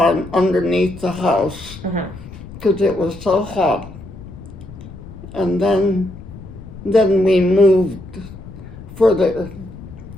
underneath the house because it was so hot. And then we moved further,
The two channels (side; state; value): left; noise; rumble, 15 dB below the sound